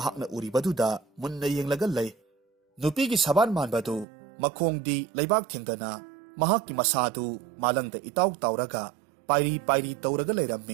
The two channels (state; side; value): drops out; left; at 4.0 s